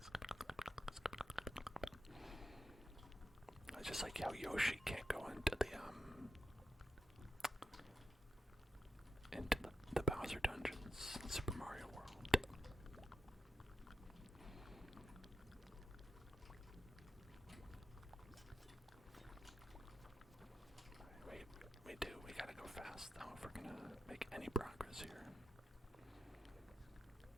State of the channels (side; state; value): both; normal; correlation 0.88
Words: It's just like how Yoshi can't go into the Bowser dungeons in Super Mario World. We gotta go fast though if we're gonna make any progress here.